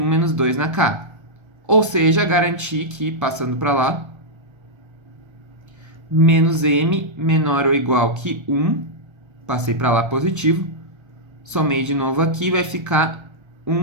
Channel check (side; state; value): left; late; 1.3 ms